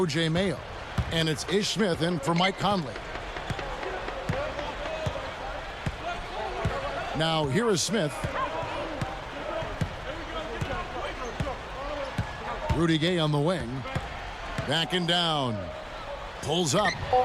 Mayo. And it's Ish Smith in for Mike Conley. Now, here is Smith. Rudy Gay on the wing. Backing down. Pulls up.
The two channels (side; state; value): both; identical; correlation 1.00